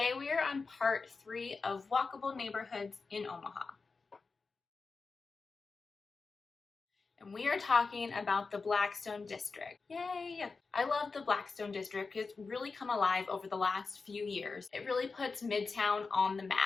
we are on part 3 of walkable neighborhoods in Omaha. And we are talking about the Blackstone District. Yay! I love the Blackstone District. It's really come alive over the last few years. It really puts Midtown on the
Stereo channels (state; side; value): quieter; right; 4.4 dB